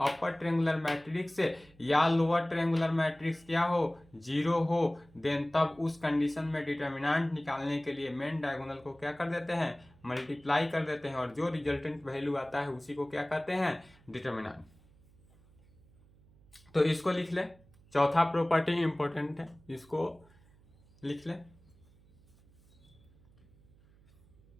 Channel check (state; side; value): noise; right; hum, 28 dB below the sound